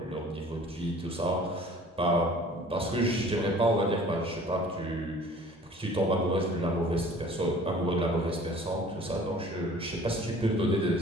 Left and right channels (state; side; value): normal; both; correlation 0.49